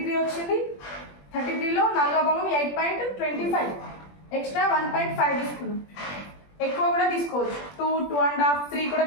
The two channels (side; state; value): right; late; 21 ms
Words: వచ్చింది. 33లో 4వ భాగం 8.25, ఎక్స్ట్రా 1.5 తీసుకున్నాం. ఎక్కువ కూడా తీసుకోవచ్చు, 2, 2.5, 3 కూడా